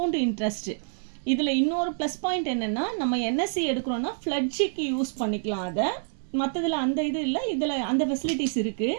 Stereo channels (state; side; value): silent; left; 60 dB below the other